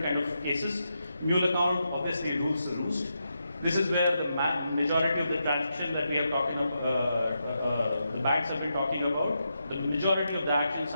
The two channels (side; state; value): both; inverted; correlation -0.84